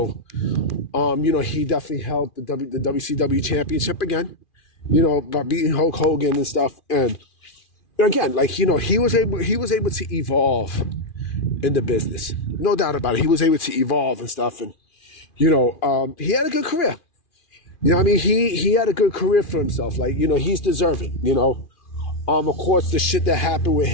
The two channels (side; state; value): right; late; 2.4 ms